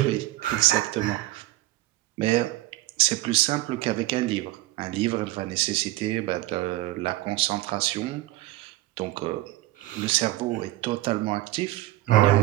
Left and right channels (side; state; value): left; quieter; 17.4 dB